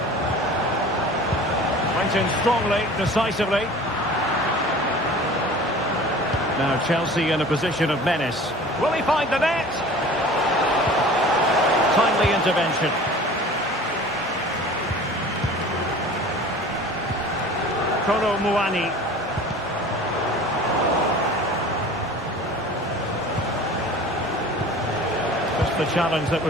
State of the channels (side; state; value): both; normal; correlation 0.42